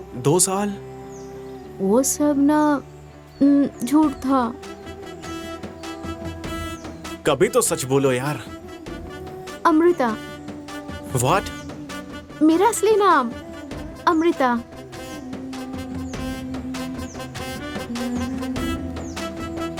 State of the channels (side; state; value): both; identical; correlation 1.00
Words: 2 साल, वो सब ना झूठ था। कभी तो सच बोलो यार। अमृता। व्हाट? मेरा असली नाम अमृता।